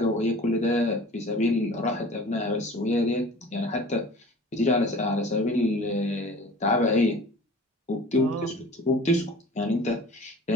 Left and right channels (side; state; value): both; normal; correlation 0.43